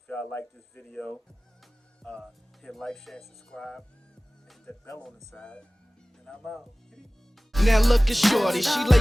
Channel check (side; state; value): both; normal; correlation 0.98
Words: y'all like this video, hit like, share, and subscribe. And hit that bell on the side. And I'm out. Now look at shorty, she